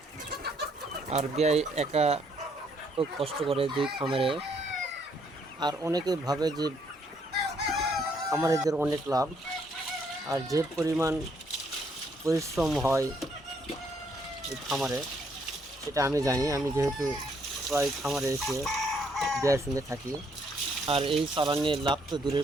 আর বিয়ে একা খুব কষ্ট করে দুই খামারে। আর অনেকে ভাবে যে খামারিদের অনেক লাভ, আর যে পরিমাণ পরিশ্রম হয় এই খামারে সেটা আমি জানি। আমি যেহেতু প্রায় খামারে এসে বিয়ের সঙ্গে থাকি। আর এই চালান নিয়ে লাভ তো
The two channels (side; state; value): both; normal; correlation 0.70